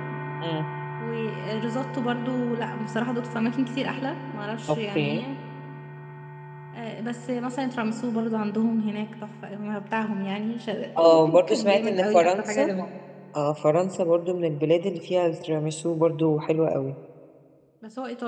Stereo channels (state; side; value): identical; both; correlation 1.00